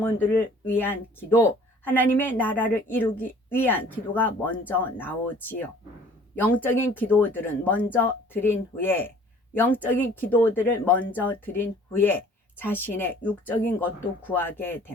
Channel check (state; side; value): normal; both; correlation 0.52